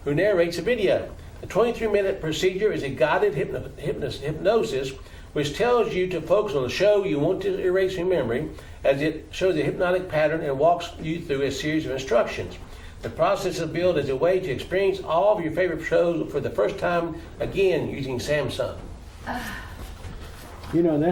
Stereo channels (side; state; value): both; identical; correlation 1.00